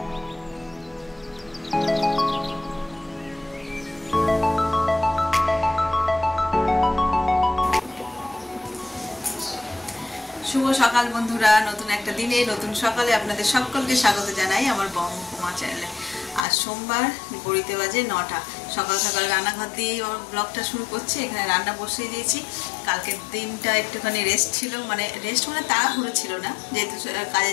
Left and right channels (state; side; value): drops out; right; at 16.4 s